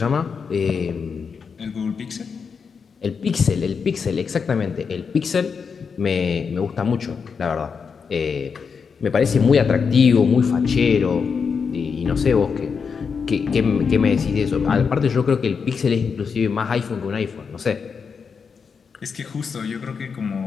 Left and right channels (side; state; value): right; quieter; 5.8 dB